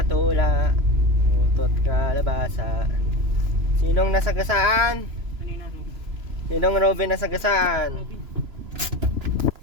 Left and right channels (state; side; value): late; left; 3.0 ms